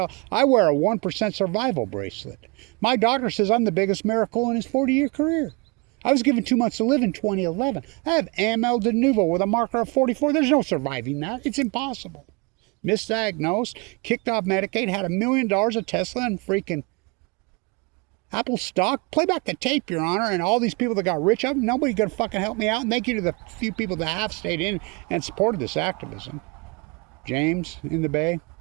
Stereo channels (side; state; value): left; quieter; 28.9 dB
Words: I wear a 1% survival bracelet. My doctor says I'm the biggest miracle in his 40-year career. I was given 2 months to live in 2011. I have AML de novo with a marker of 44. There's no surviving that. It's impossible. Misdiagnosed, kicked off Medicaid, had $1 million of Tesla and freaking Apple stock. Play back the tape, Your Honor, and all these people that got rich, nobody gonna fucking help me out. And thank you to the few people that have stayed in and supported this activism. James in the Bay.